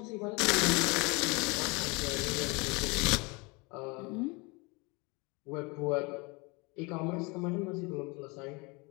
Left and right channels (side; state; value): right; quieter; 27.7 dB